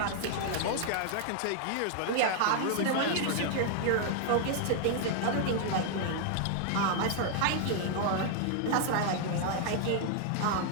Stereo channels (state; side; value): different; both; correlation 0.00